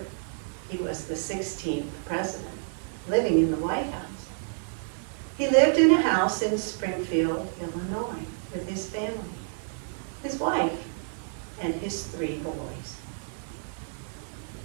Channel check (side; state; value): left; silent; digital silence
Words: he was the 16th president, living in the White House, he lived in a house in Springfield, Illinois, with his family, his wife, and his 3 boys.